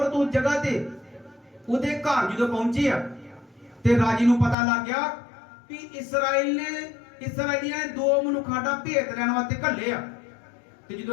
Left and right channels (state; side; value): drops out; right; at 4.5 s